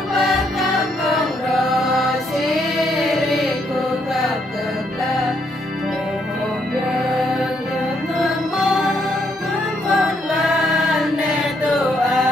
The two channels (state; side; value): normal; both; correlation 0.73